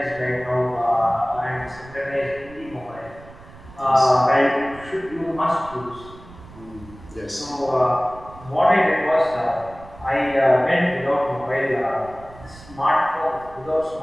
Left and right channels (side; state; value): right; noise; rumble, 20 dB below the sound